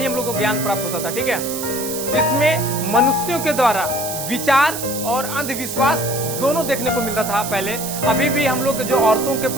हम लोग को ज्ञान प्राप्त होता था। ठीक है, इसमें मनुष्यों के द्वारा विचार और अंधविश्वास दोनों देखने को मिलता था पहले। अभी भी हम लोग जो औरतों के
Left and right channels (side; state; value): right; noise; hiss, 6 dB below the sound